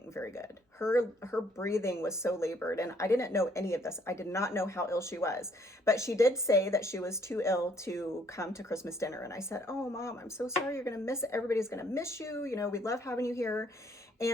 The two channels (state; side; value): normal; both; correlation 0.65